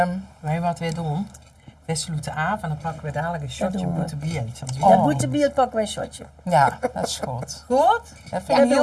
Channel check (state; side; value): identical; both; correlation 1.00